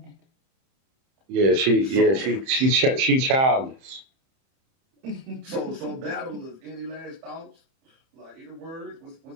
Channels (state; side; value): late; left; 31 ms